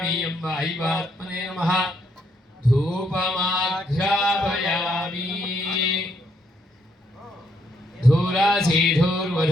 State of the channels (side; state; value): both; normal; correlation 0.74